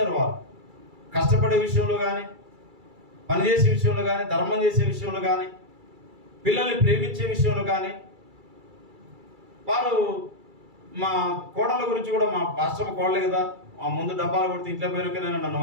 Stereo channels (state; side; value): late; left; 2.3 ms